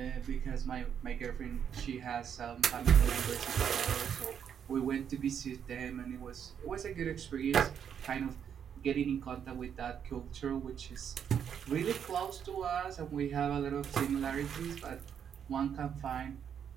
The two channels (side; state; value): left; quieter; 8.2 dB